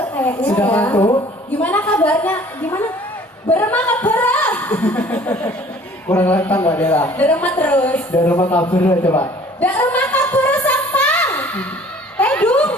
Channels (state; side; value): normal; both; correlation 0.52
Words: kayaknya. Sudah ya? ngantuk? Gimana kabarnya? Gimana? Berema kabara. Kurang lantang Mbak Dela. Berema terus. Dari rumah kabar coba. Dak rumah kabara sampang. Tedung.